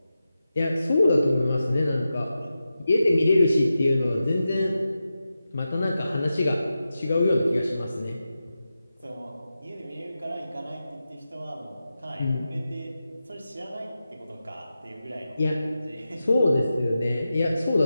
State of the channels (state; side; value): inverted; both; correlation -0.91